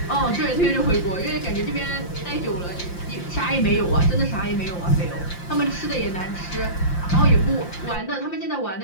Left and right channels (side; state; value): right; late; 5.7 ms